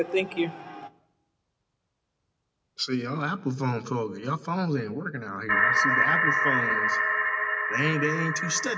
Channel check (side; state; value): both; identical; correlation 1.00